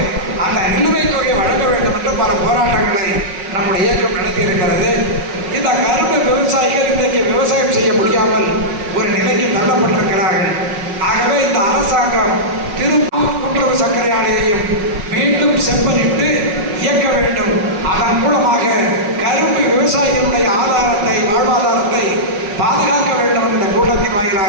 அந்த நிலுவைத் தொகை வழங்க வேண்டும் என்று பல போராட்டங்களை நம்முடைய இயக்கம் நடத்தி இருக்கிறது. இந்த கரும்பு விவசாயிகள் இன்றைக்கு விவசாயம் செய்ய முடியாமல் ஒரு நிலைக்கு தள்ளப்பட்டிருக்கிறார்கள். ஆகவே இந்த அரசாங்கம் திருப்பூர் கூட்டுறவு சர்க்கரை ஆலையையும் மீண்டும் செப்பனிட்டு இயக்க வேண்டும். அதன் மூலமாக கரும்பு விவசாயிகளுடைய ஆதாரத்தை, வாழ்வாதாரத்தை பாதுகாக்க வேண்டும் என்ற கூட்டத்தின்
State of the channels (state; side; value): late; left; 5.4 ms